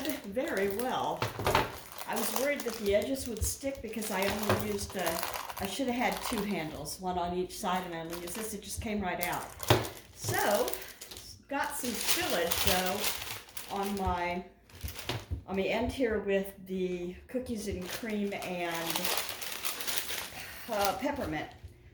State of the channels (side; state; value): both; identical; correlation 1.00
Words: very well. I was worried that the edges would stick because I only used, I should have had 2 handles, one on each side, and I only used this. It just came right out. So, got some spillage though on the end here with the cookies and cream and peppermint.